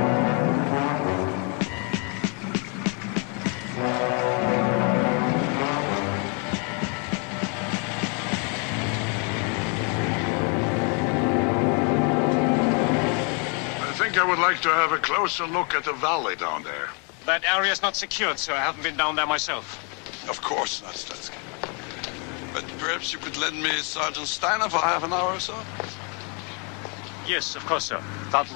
I think I would like to have a closer look at the valley down there. That area's not secured, sir. I haven't been down there myself. Of course not, Stransky. But perhaps you could lend me Sergeant Steiner for half an hour or so? Yes, of course, sir. Sergeant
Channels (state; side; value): quieter; right; 35.9 dB